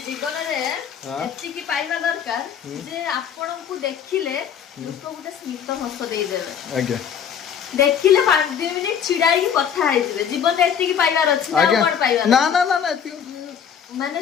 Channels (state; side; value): quieter; right; 8.0 dB